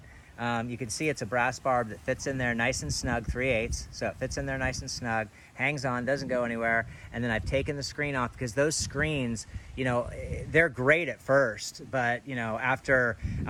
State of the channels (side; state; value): both; identical; correlation 1.00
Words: you can see it's a brass barb that fits in there nice and snug, 3/8. So it fits in there nice and snug, hangs on, doesn't go anywhere. And then I've taken the screen off because those screens, they're great at first, but after,